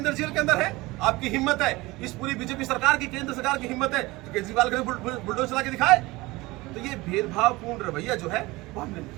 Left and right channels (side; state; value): left; quieter; 21.3 dB